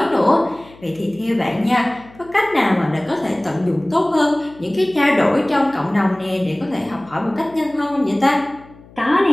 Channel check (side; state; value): left; noise; hum, 23 dB below the sound